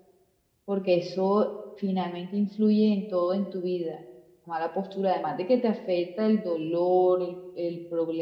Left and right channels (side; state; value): both; identical; correlation 1.00